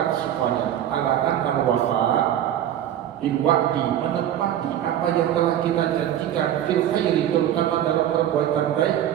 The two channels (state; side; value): quieter; left; 11.1 dB